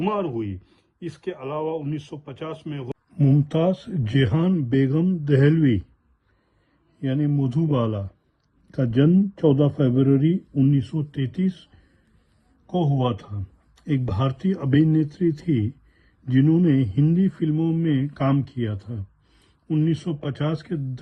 हुई। इसके अलावा 1950 में मुमताज जेहान बेगम दहलवी यानी मधुबाला का जन्म 14 फरवरी 1933 को हुआ था। एक भारतीय अभिनेत्री थी जिन्होंने हिंदी फिल्मों में काम किया था। 1950 के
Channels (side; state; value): both; identical; correlation 1.00